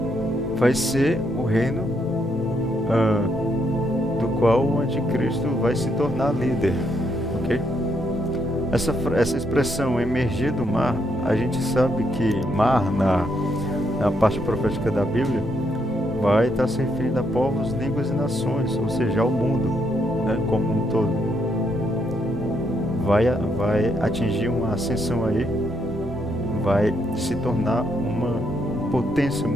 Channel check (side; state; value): both; normal; correlation 0.76